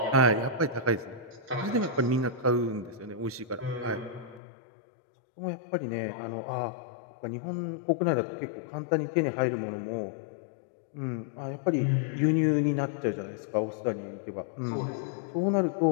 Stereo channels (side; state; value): right; drops out; at 4.4 s